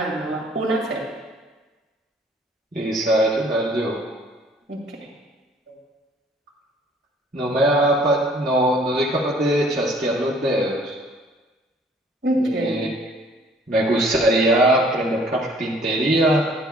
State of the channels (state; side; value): normal; both; correlation 0.57